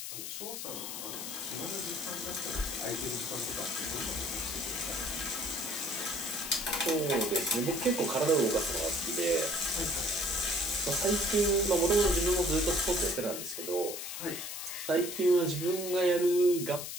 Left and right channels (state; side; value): noise; left; hiss, 7 dB below the sound